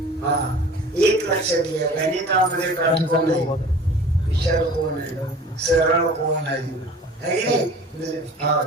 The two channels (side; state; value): both; normal; correlation 0.43